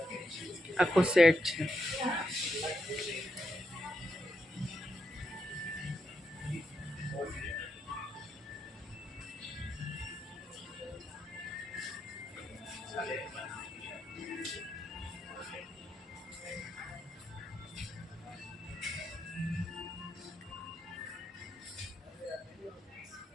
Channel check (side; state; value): both; normal; correlation 0.83